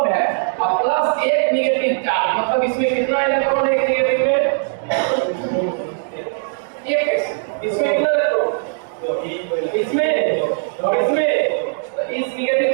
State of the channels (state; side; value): silent; left; digital silence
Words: है और प्लस 1 निगेटिव चार्ज। मतलब इसमें कितना इलेक्ट्रॉन है निगेटिव में 1, इसमें कितना इलेक्ट्रॉन, इसमें और इसमें, इस निगेटिव